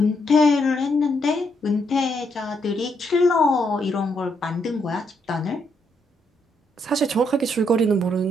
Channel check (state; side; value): normal; both; correlation 0.76